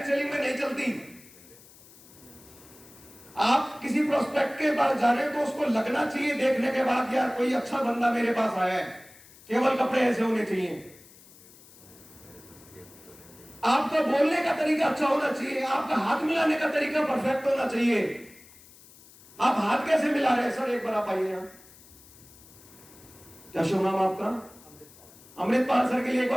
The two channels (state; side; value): noise; left; hiss, 23 dB below the sound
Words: सेलिंग में नहीं चलती। आप किसी प्रोस्पेक्ट के पास जा रहे हो तो उसको लगना चाहिए देखने के बाद, यार कोई अच्छा बंदा मेरे पास आया है। केवल कपड़े ऐसे होने चाहिए। आपका बोलने का तरीका अच्छा होना चाहिए। आपका हाथ मिलाने का तरीका परफेक्ट होना चाहिए। आप हाथ कैसे मिला रहे हैं? सर एक बार आप आइए यहां, क्या शुभ नाम आपका? अमृतपाल सर के लिए एक